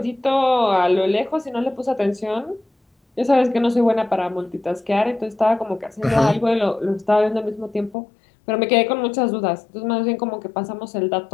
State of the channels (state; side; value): drops out; right; at 8.0 s